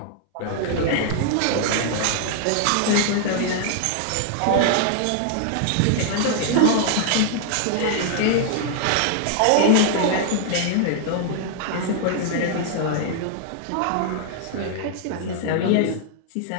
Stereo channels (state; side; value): different; both; correlation 0.00